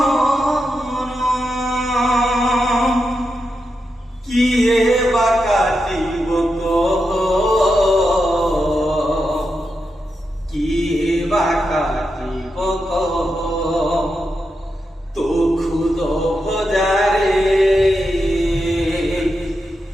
কিয়ে বা কাটিব কিয়ে বা কাটিব তো খুদ ভজারে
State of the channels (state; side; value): normal; both; correlation 0.87